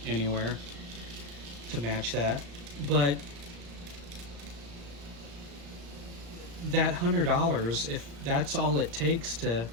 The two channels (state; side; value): late; left; 35 ms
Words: anywhere to match that. But that $100, if that's all it takes to